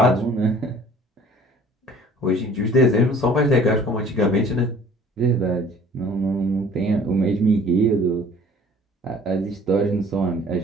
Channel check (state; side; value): normal; both; correlation 0.51